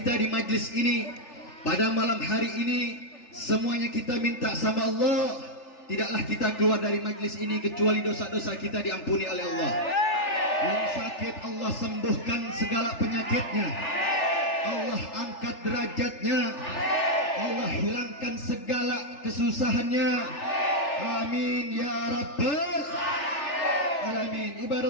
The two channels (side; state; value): right; late; 3.4 ms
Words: di majlis ini pada malam hari ini, semuanya kita minta sama Allah, tidaklah kita keluar dari majlis ini kecuali dosa-dosa kita diampuni oleh Allah. Yang sakit Allah sembuhkan segala penyakitnya, Allah angkat derajatnya, Allah hilangkan segala kesusahannya. Amin ya rabbal alamin.